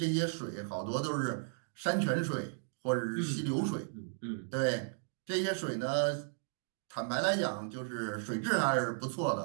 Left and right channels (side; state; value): left; silent; digital silence